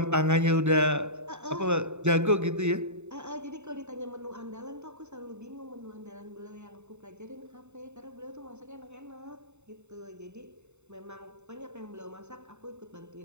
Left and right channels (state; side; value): late; left; 0.82 ms